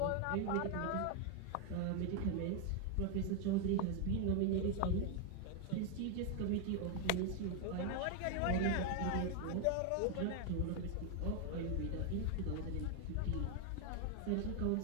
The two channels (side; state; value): both; different; correlation 0.00